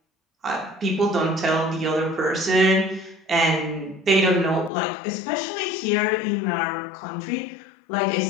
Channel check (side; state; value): right; drops out; at 4.7 s